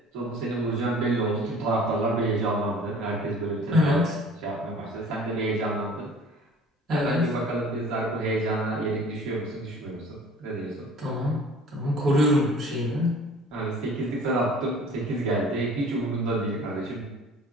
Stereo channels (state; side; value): normal; both; correlation 0.48